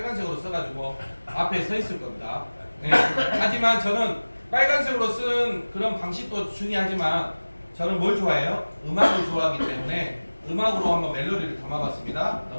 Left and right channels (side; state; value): both; inverted; correlation -1.00